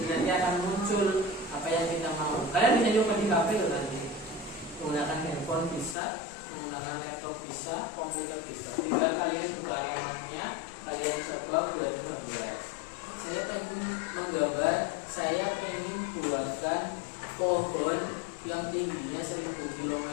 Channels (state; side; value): drops out; right; at 6.0 s